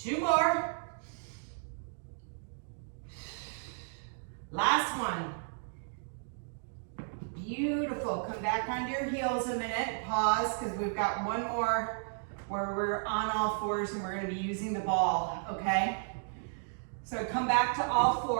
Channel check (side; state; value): left; silent; digital silence